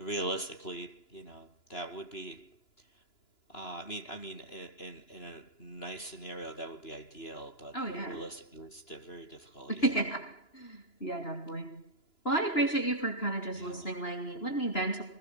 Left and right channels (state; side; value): late; right; 2.9 ms